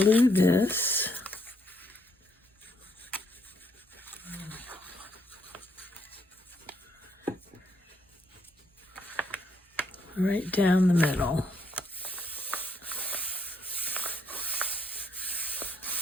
this. Right down the middle.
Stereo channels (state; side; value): normal; both; correlation 0.73